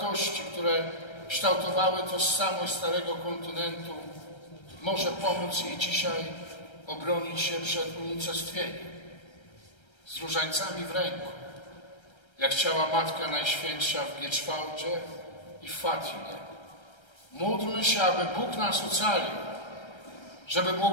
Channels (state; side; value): late; right; 1.3 ms